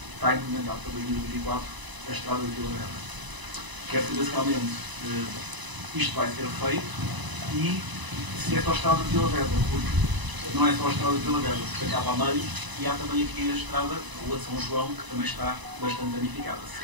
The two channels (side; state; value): left; late; 1.0 ms